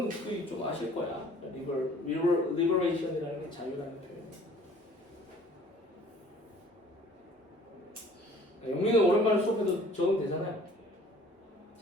좀 아실 거야. liberation이라는 게 자유라는 표현. 영민은 오랜만에 수업해도 적으면 되잖아요.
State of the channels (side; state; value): both; normal; correlation 0.52